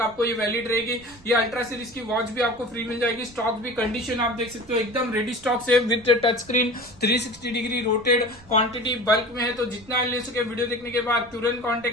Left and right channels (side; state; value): right; noise; rumble, 25 dB below the sound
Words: आपको ये वैलिड रहेगी। ये अल्ट्रा सीरीज की वॉच भी आपको फ्री मिल जाएगी। स्टॉक भी कंडीशन आप देख सकते हो एकदम रेडी स्टॉक से, with touch screen 360 degree rotated, quantity bulk में है। तो जितना ले सके वीडियो देखने के बाद तुरंत कॉन्टेक्ट